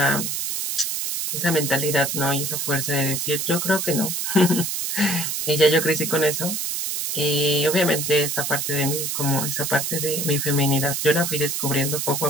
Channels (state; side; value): noise; right; hiss, 2 dB below the sound